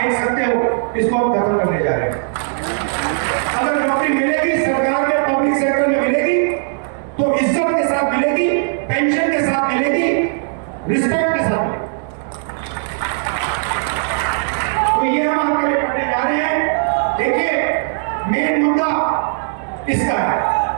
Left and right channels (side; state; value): left; silent; 62 dB below the other